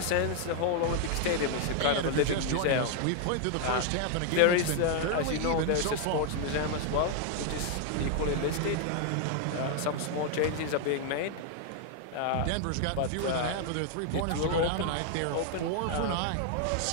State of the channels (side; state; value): both; different; correlation 0.00